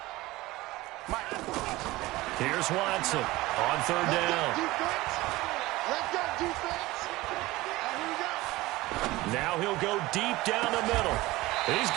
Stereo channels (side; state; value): left; quieter; 19.2 dB